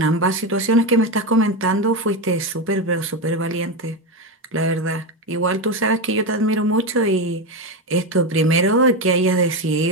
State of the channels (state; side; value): normal; both; correlation 0.14